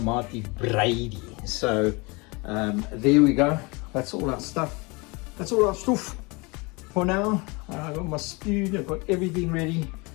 Breidi. So there we go. That's all our stuff. That's all our stuff for now. I've got my spoon, I've got everything ready.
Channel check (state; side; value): quieter; right; 27.3 dB